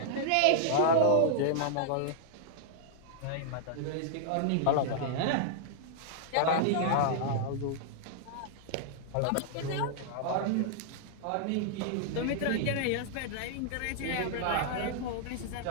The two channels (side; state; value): both; different; correlation -0.01